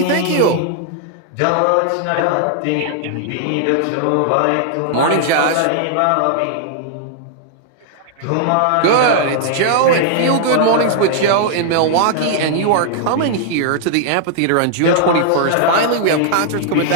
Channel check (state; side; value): different; both; correlation -0.01